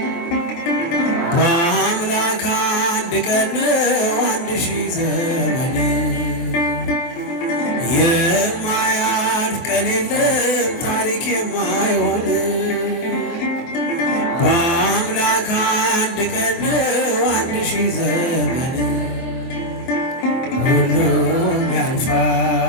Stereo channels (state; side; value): late; right; 23 ms